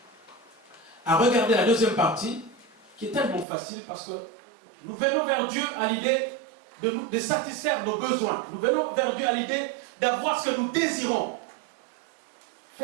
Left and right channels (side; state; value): left; drops out; at 3.5 s